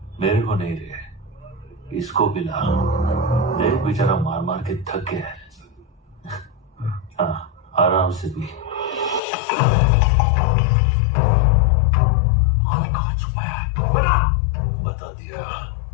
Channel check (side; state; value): right; drops out; at 9.2 s